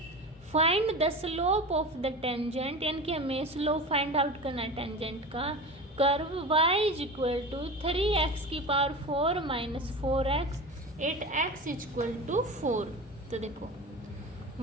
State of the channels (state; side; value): normal; both; correlation 0.30